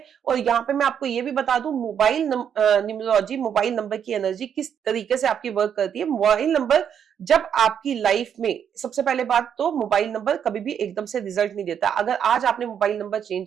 और यहाँ पे मैं आपको ये भी बता दूं, मोबाइल न्यूमरोलॉजी, मोबाइल नंबर की एनर्जी किस तरीके से आपकी वर्क करती है। मोबाइल नंबर जब आपकी लाइफ में, सबसे पहले बात तो मोबाइल नंबर कभी भी एकदम से रिजल्ट नहीं देता। अगर आज आपने मोबाइल नंबर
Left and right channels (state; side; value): quieter; left; 8.3 dB